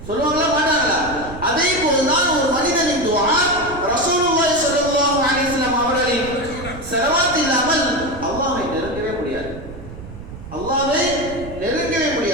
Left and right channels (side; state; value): right; noise; rumble, 13 dB below the sound